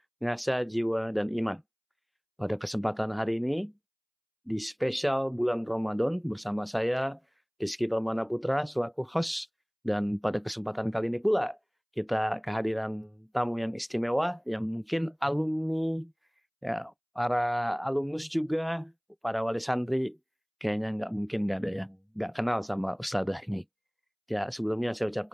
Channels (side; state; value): both; identical; correlation 1.00